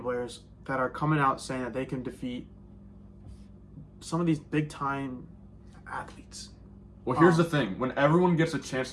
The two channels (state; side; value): identical; both; correlation 1.00